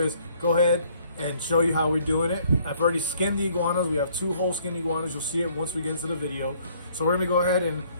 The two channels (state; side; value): inverted; both; correlation -0.62